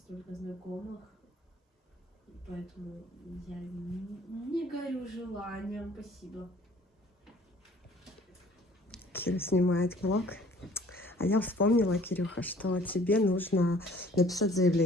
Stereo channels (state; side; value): normal; both; correlation 0.54